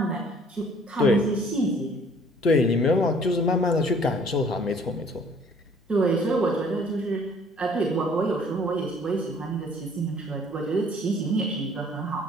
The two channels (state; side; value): normal; both; correlation 0.56